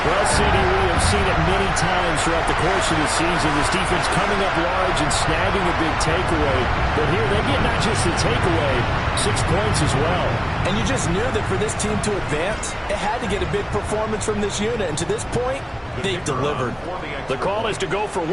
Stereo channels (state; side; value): identical; both; correlation 1.00